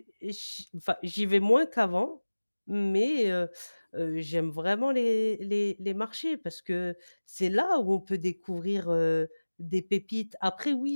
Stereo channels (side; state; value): both; inverted; correlation -1.00